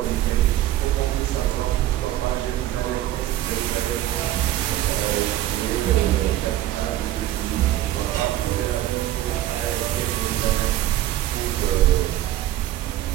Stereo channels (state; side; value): quieter; left; 13.8 dB